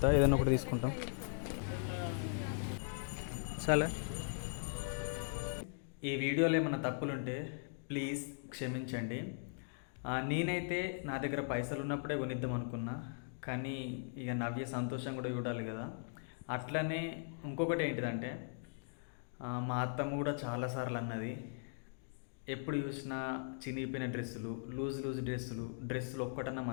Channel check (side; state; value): right; silent; digital silence